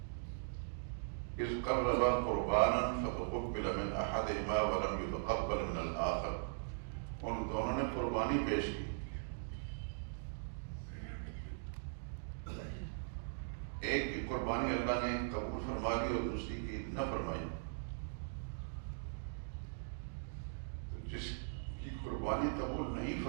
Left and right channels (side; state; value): left; silent; digital silence